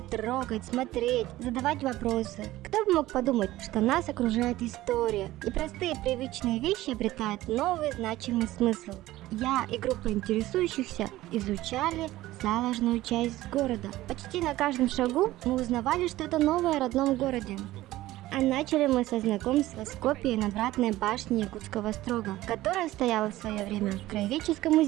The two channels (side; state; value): left; quieter; 16.4 dB